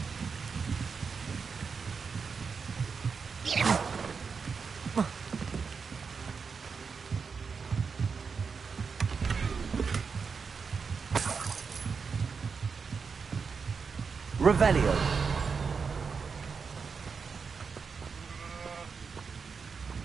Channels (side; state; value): left; quieter; 5.4 dB